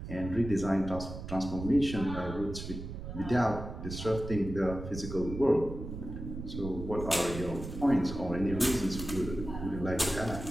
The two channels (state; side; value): noise; right; rumble, 8 dB below the sound